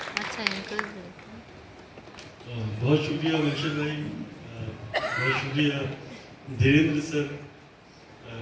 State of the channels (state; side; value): identical; both; correlation 1.00